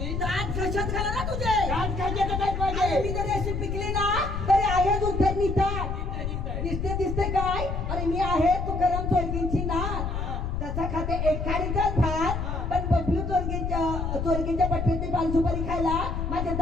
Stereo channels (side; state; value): left; noise; rumble, 3 dB below the sound